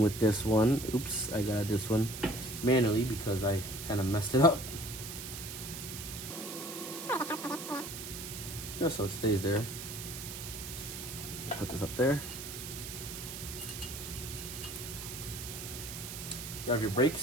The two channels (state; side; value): noise; right; hiss, 8 dB below the sound